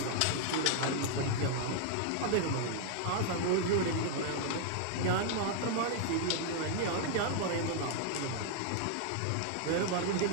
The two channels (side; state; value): both; different; correlation 0.00